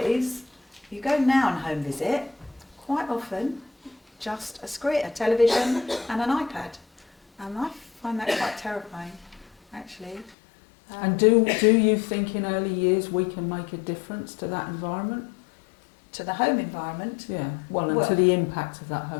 You go now on home visit, quite often just a screen, a television and an iPad. And I find that quite terrifying, actually. And do you think in early years we can make a difference to that environment? To the home environment? Yeah, and to the impact of that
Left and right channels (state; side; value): drops out; right; at 10.4 s